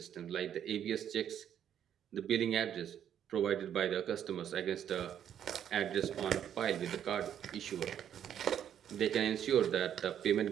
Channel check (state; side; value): quieter; left; 9.6 dB